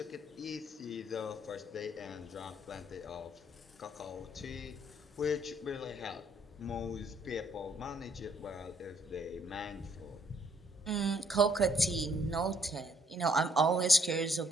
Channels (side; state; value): both; normal; correlation 0.67